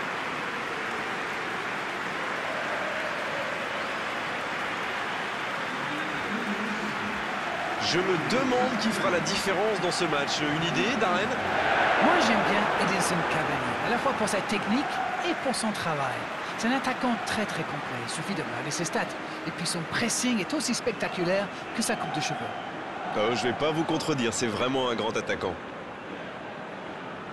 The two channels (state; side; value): identical; both; correlation 1.00